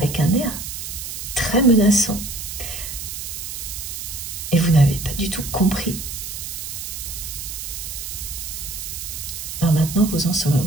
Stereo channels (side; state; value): right; noise; hiss, 7 dB below the sound